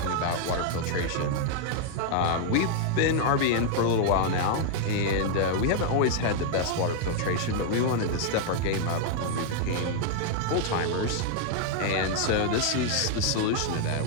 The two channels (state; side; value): different; both; correlation 0.00